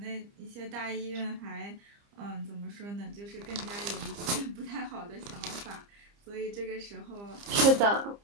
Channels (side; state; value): left; late; 30 ms